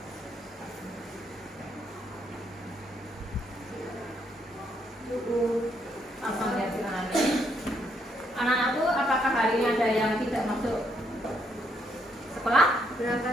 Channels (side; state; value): both; normal; correlation 0.74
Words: Langsung lihat silakan. Anak-anakku, apakah hari ini ada yang tidak masuk sekolah?